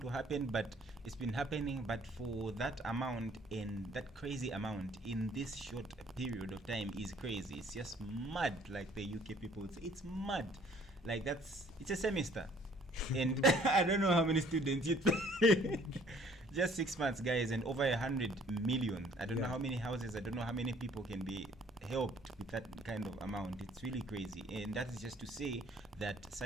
to happen, but it's been happening. But for that amount and that crazy amount in this short period of time is crazy. It's just mad, like the UK people would say. It's mad. Like it's a semester. And I don't know how many students you just 6 months, guys, and over 100 million. I don't know how many houses, I don't know how many people can be helped with that kind of amount. It's really crazy. And that is just to say that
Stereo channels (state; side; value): normal; both; correlation 0.58